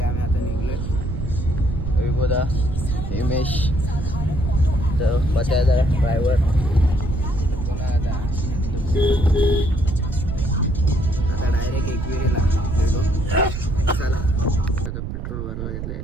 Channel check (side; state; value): right; noise; rumble, 5 dB below the sound